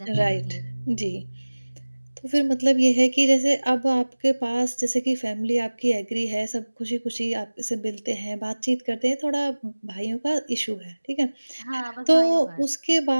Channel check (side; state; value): both; inverted; correlation -1.00